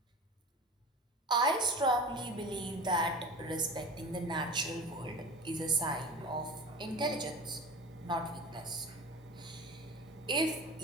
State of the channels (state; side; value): normal; both; correlation 0.34